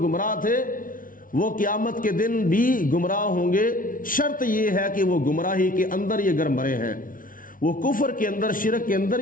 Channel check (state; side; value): late; right; 0.39 ms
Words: تھے وہ قیامت کے دن بھی گمراہ ہوں گے، شرط یہ ہے کہ وہ گمراہی کے اندر یہ گر مرے ہیں، وہ کفر کے اندر، شرک کے اندر